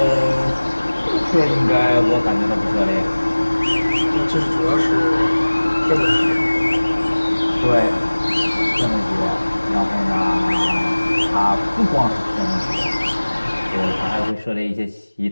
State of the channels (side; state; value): both; inverted; correlation -1.00